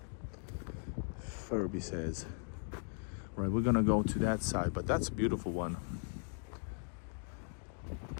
Furby says. Right, we're gonna go to that side, but that's a beautiful one.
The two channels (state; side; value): silent; right; 52 dB below the other